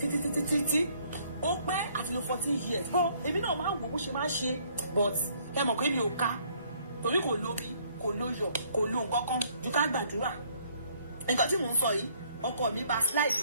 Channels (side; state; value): both; inverted; correlation -0.64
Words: Ó pẹ́ àti lo 14 years. Bọ́ èmi náà máa ń wò bó ṣe máa ń ṣe, but ẹ mọ̀ pé mi ò ká torí kò lóbi kò lóyọ̀ kò lo nǹkan kan ju ká gbàdúrà. Nǹkan tí mò ń sọ yìí ọkọ mi bá slide